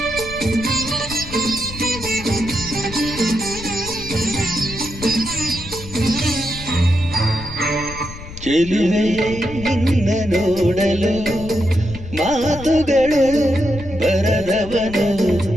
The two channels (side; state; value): left; noise; rumble, 13 dB below the sound